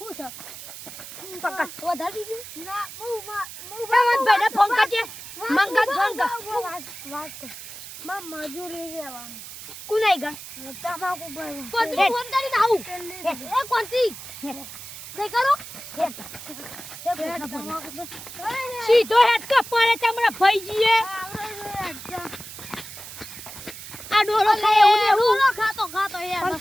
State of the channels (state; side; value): noise; right; hiss, 13 dB below the sound